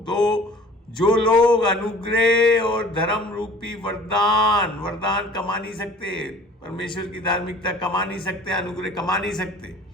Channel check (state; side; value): normal; both; correlation 0.48